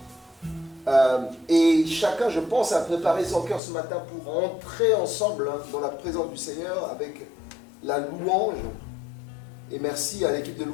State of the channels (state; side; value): drops out; right; at 3.6 s